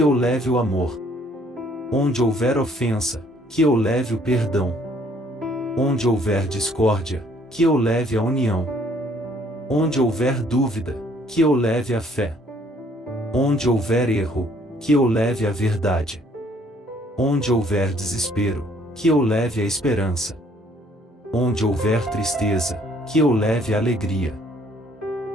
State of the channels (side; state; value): both; normal; correlation 0.62